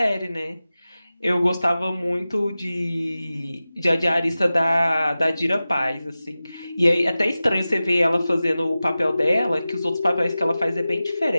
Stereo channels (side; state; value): both; inverted; correlation -0.95